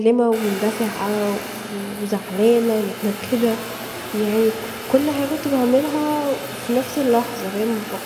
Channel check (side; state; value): both; identical; correlation 1.00